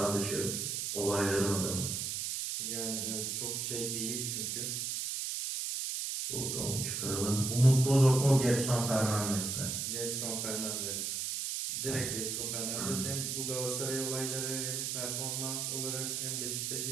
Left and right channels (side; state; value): right; noise; hiss, 2 dB below the sound